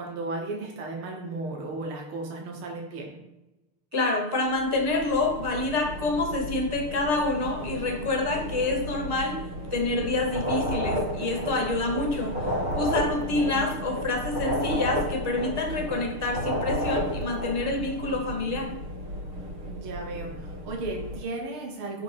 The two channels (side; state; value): left; late; 6.6 ms